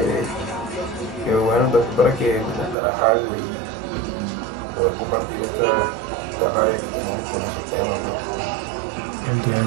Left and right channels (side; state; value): left; drops out; at 2.8 s